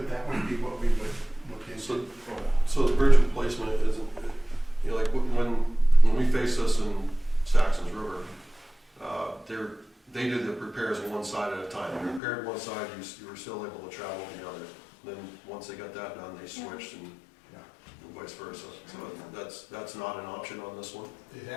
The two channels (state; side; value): drops out; right; at 12.2 s